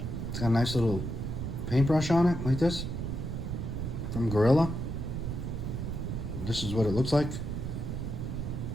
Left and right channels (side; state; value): right; noise; rumble, 4 dB below the sound